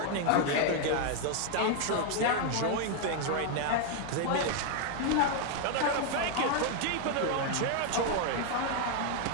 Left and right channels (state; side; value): different; both; correlation 0.00